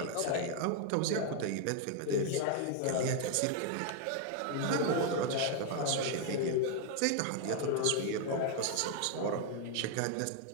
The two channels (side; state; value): both; different; correlation 0.00